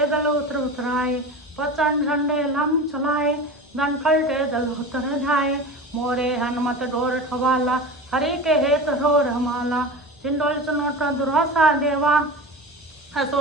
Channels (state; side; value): normal; both; correlation 0.30